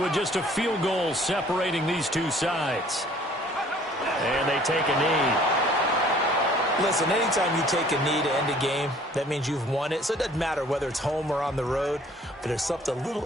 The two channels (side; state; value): both; normal; correlation 0.55